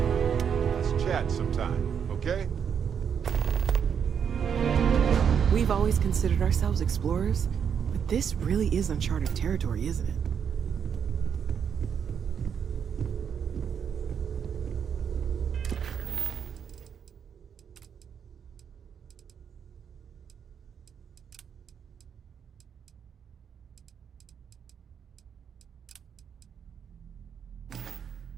Let's chat sometime, okay? We've always considered ourselves explorers, but this really is uncharted territory, isn't it?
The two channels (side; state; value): left; quieter; 7.5 dB